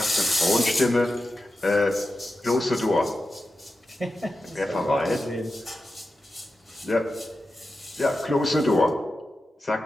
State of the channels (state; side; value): normal; both; correlation 0.91